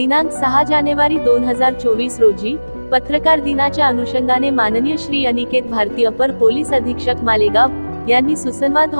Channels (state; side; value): inverted; both; correlation -1.00